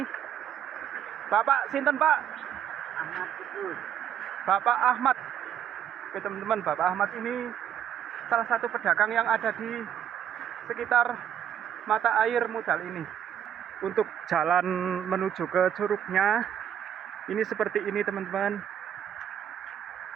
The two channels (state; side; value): quieter; left; 9.5 dB